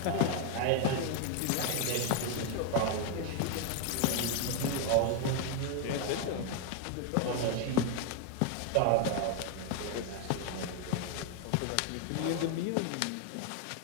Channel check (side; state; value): both; different; correlation 0.01